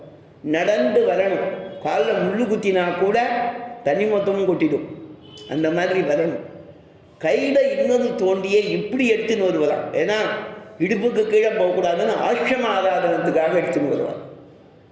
நடந்து வரணும். காலில் முள்ளு குத்தினா கூட தனி மொத்தமும் கொட்டிடும். அந்த மாதிரி வரணும். கையில் இன்னொரு தோண்டியை இப்படி எடுத்துன்னு வருவலாம். ஏன்னா இடுப்புக்கு கீழே போகக்கூடாதுன்னு ஆசிரம ஆராதனத்துக்காக எடுத்துன்னு வருவான்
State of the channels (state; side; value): identical; both; correlation 1.00